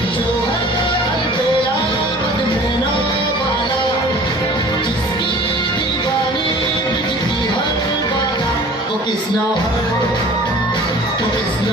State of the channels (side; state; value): both; normal; correlation 0.46